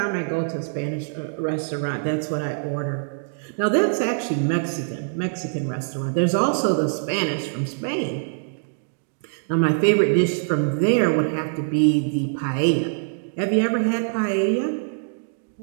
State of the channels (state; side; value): silent; left; digital silence